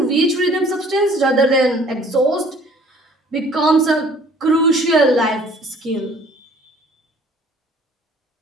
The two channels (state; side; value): normal; both; correlation 0.54